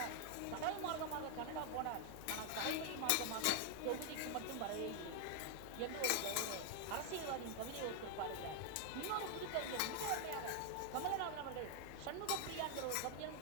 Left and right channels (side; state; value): both; different; correlation 0.00